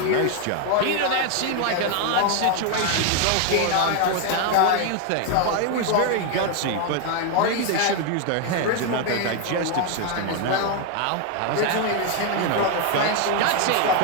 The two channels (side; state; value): both; different; correlation 0.01